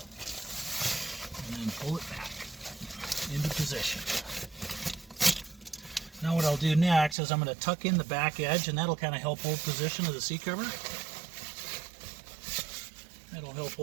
and then pull it back into position. Now what I'll do next is I'm going to tuck in the back edge, and that'll kind of help hold position of the seat cover. That'll help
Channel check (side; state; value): left; drops out; at 7.2 s